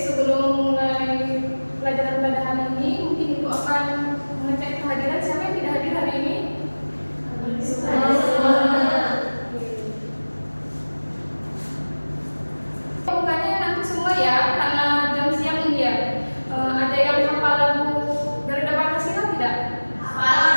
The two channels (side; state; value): both; inverted; correlation -1.00